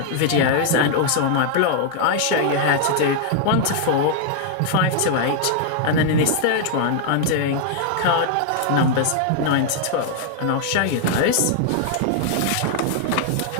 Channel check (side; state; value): both; different; correlation 0.00